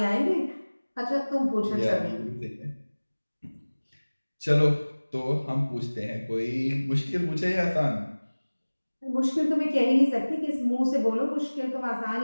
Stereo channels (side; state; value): both; inverted; correlation -1.00